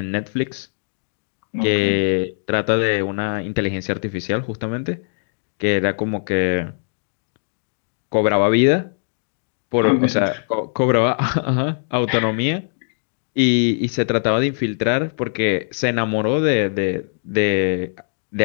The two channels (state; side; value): silent; right; digital silence